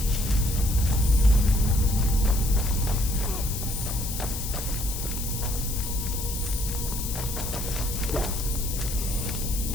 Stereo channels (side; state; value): left; noise; hiss, 6 dB below the sound